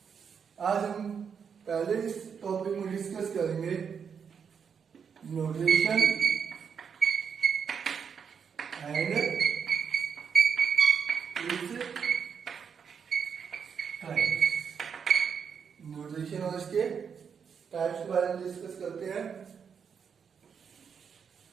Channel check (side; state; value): left; quieter; 6.8 dB